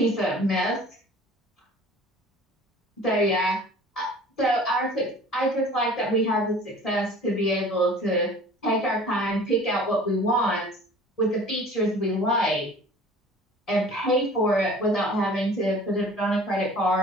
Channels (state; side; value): normal; both; correlation 0.46